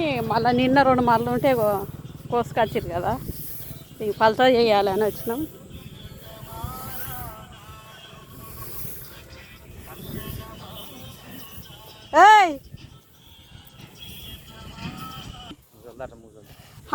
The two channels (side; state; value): both; identical; correlation 1.00